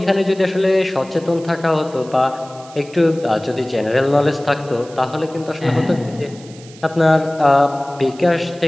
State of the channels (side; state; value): right; noise; hiss, 22 dB below the sound